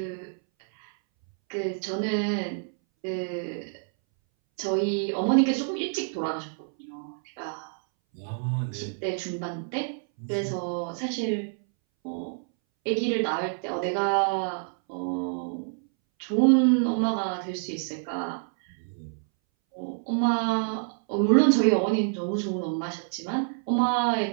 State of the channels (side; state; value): left; silent; 60 dB below the other